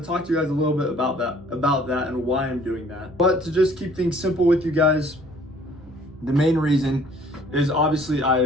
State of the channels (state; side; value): normal; both; correlation 0.56